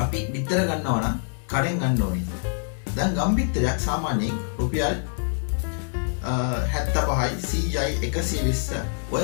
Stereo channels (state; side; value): silent; right; 62 dB below the other